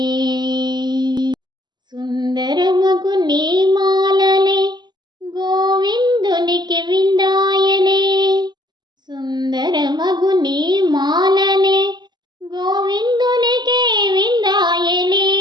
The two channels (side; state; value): left; late; 0.21 ms